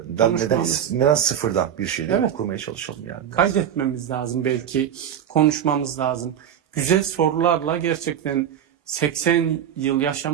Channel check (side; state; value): left; quieter; 9.5 dB